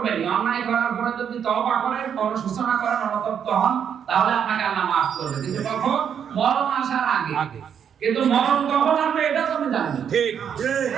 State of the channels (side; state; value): left; quieter; 8.1 dB